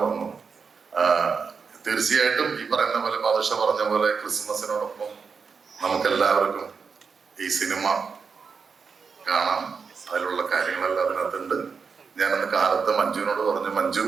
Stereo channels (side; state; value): left; quieter; 5.5 dB